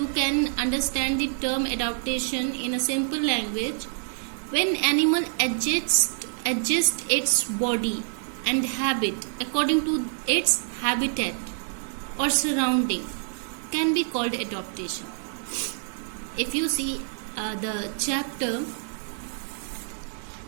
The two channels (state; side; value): silent; left; digital silence